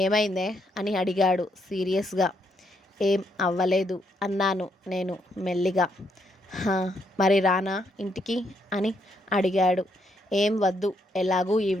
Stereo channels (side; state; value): both; normal; correlation 0.75